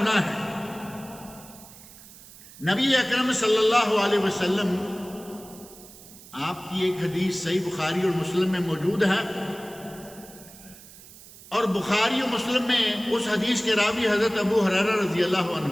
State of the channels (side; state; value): right; noise; hiss, 20 dB below the sound